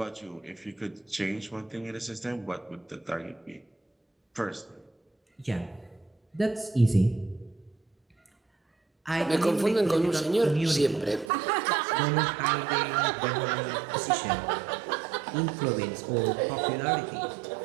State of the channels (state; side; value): drops out; left; at 11.3 s